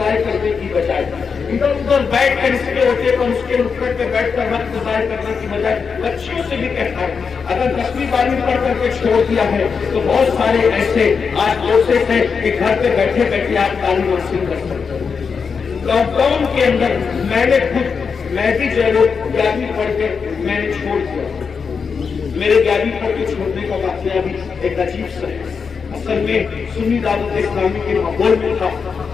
کرنے کی بجائے ادھر ادھر بیٹھ کر اس کے ہوتے پر اس کے نکڑ پہ بیٹھ کر وقت ضائع کرنے کی بجائے بچیوں سے بھی کہتا ہوں اگر 10ویں 12ویں پڑھ کر کے چھوڑ دیا ہے تو بہت سارے ایسے آج کورسز ہیں کہ گھر پہ بیٹھے بیٹھے آپ تعلیم حاصل کر سکتے ہیں۔ لاک ڈاؤن کے اندر میں نے میں بھی جو ہے وہ 11ویں پڑھ کے میں نے چھوڑ دیا، میرے 11ویں پڑھ کے چھوڑنے کا واقعہ بھی ایک عجیب سا ہے۔ اصل میں سنی دعوت اسلامی کے ماحول میں تھا،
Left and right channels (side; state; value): right; quieter; 5.7 dB